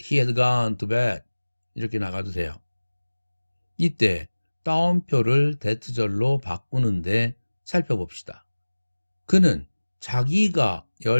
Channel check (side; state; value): both; inverted; correlation -1.00